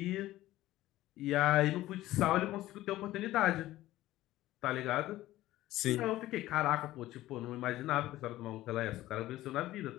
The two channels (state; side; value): quieter; right; 15.7 dB